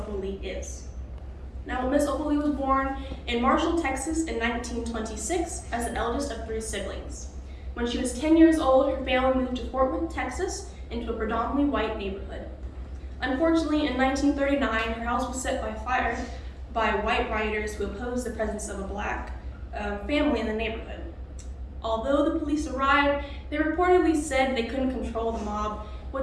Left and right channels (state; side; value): identical; both; correlation 1.00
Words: Lee is. Now, Miss Opal Lee was born in Marshall, Texas in 1926 as the eldest of 3 siblings. When she was 10 years old, her family moved to Fort Worth, Texas, into a predominantly white neighborhood. Unfortunately, in 1939, her house was set by fire by white rioters who opposed the presence of a black family in the neighborhood. Although the police arrived, they reportedly said they couldn't control the mob,